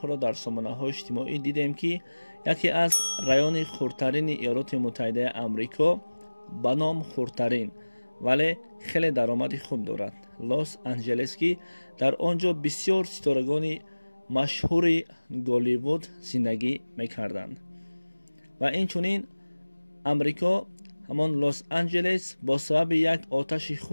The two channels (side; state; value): both; inverted; correlation -1.00